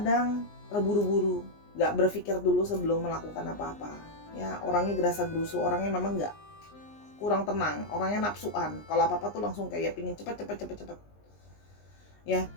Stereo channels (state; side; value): late; right; 19 ms